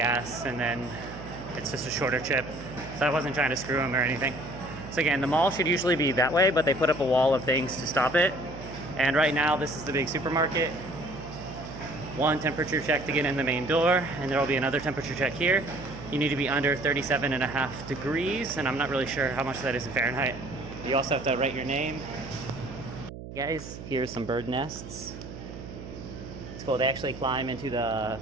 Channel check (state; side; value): noise; right; hum, 12 dB below the sound